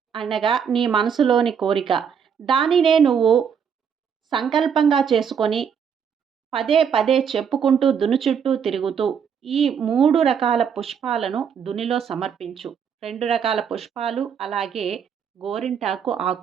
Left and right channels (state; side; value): quieter; left; 7.3 dB